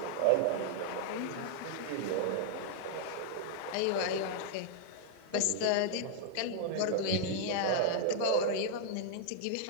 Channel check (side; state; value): both; different; correlation 0.00